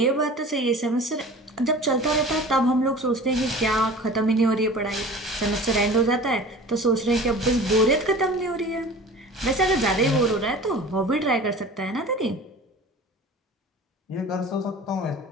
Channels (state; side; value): normal; both; correlation 0.40